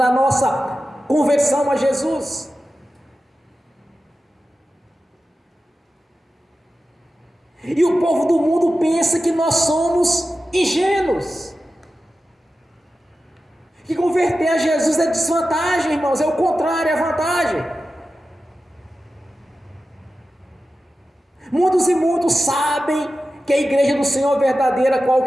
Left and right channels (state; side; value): normal; both; correlation 0.93